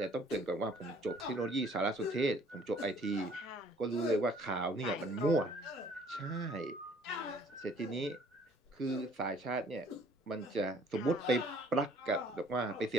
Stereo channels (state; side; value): normal; both; correlation 0.57